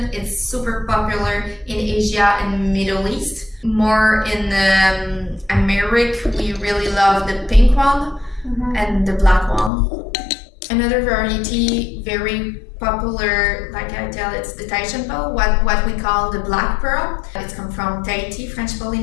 it's super popular in Asia and Middle East. More in America, we really love the pink one and the black one. Another variety, very popular, like I tell, it's the Tahitian pearl, what we call the black pearl. It's come from Tahiti, French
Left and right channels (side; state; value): right; drops out; at 9.7 s